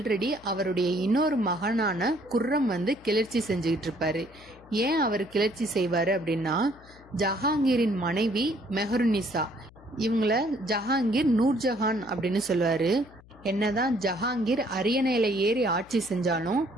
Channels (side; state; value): left; noise; hum, 24 dB below the sound